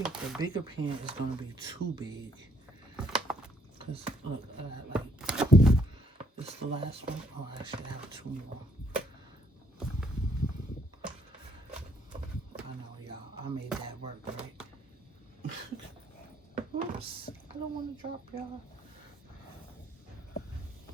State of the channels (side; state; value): both; normal; correlation 0.68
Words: the bigger pan is going to be too big. Because, look, this is the last one. Oh, I actually have two more. I know, y'all. I made that work, right? Oops. I don't want to drop y'all.